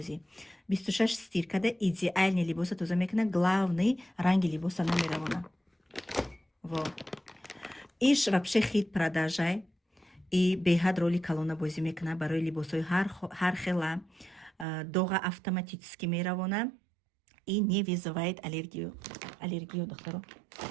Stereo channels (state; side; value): drops out; left; at 14.7 s